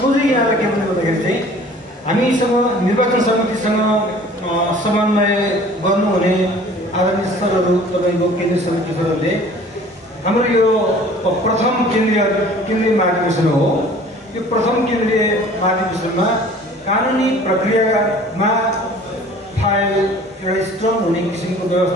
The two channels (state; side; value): normal; both; correlation 0.49